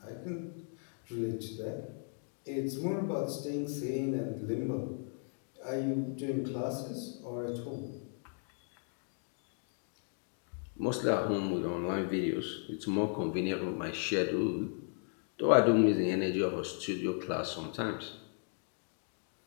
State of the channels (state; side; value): silent; right; 54 dB below the other